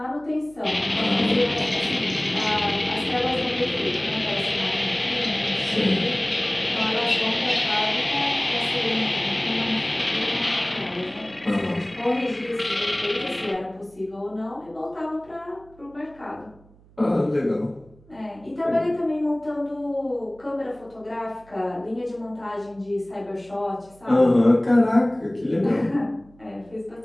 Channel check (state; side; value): noise; right; hum, 27 dB below the sound